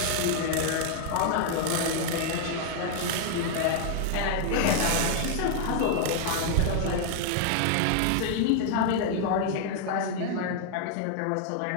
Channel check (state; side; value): different; both; correlation 0.00